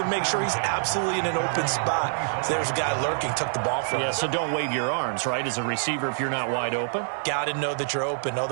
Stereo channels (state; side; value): silent; left; digital silence